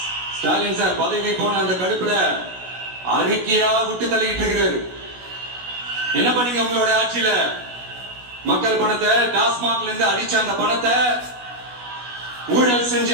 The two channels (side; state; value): left; late; 16 ms